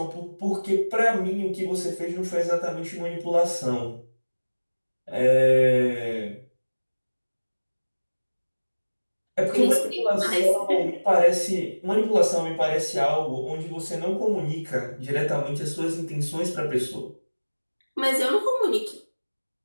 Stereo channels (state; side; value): inverted; both; correlation -1.00